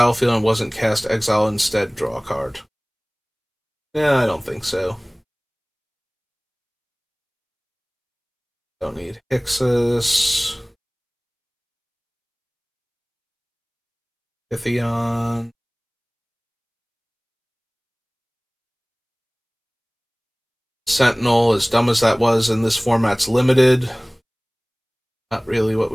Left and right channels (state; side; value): identical; both; correlation 1.00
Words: and wasn't cast, exile instead, draw a card. Yeah, I don't think so. Don't need Hixus. Pythion. Sentinel, as dumb as that was in this format's limited. Not really what